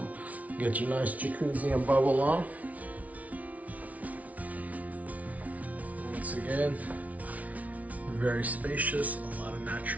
get your nice jacuzzi and bubble on. Once again, very spacious, a lot of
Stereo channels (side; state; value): left; late; 0.070 ms